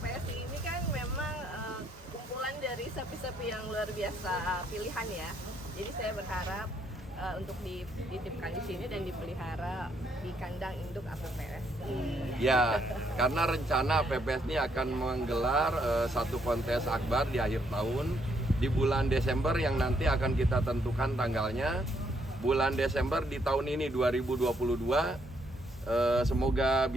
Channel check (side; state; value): both; normal; correlation 0.73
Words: ini kan memang kumpulan dari sapi-sapi yang luar biasa pilihan ya. Jadi saya berharap untuk dititipkan di sini dan dipelihara di kandang induk APPSI. Ya, karena rencana APPSI ini akan menggelar satu kontes akbar di akhir tahun di bulan Desember yang nanti akan kita tentukan tanggalnya. Bulan Desember di tahun ini 2022. Semoga